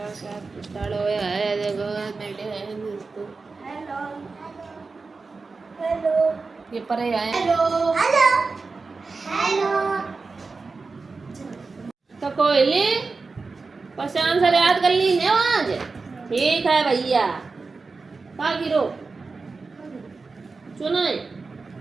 स्टार्ट हो गया है। देखो बैठे हैं दोस्तों। हेलो हेलो ये परे आए। Hello hello hello. तो कोयली पहचान से याद कर ली है आज। ठीक है भैया। का गिरो सुनो,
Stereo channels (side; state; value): left; quieter; 4.2 dB